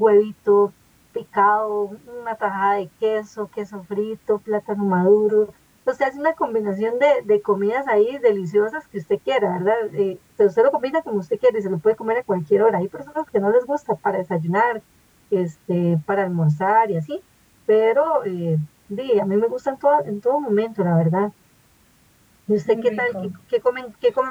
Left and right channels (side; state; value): both; identical; correlation 1.00